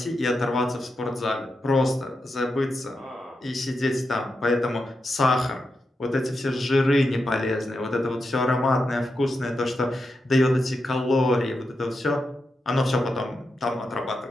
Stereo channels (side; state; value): both; normal; correlation 0.87